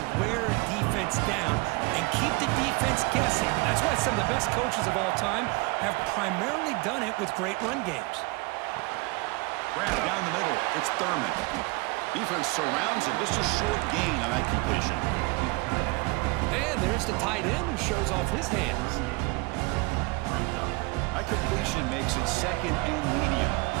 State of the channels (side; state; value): left; quieter; 26.1 dB